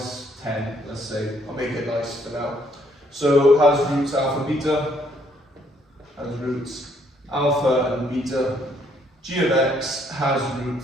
10, let's say. I'll make it nice for now. So has roots alpha beta, has roots alpha and beta. G of x has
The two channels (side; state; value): both; normal; correlation 0.68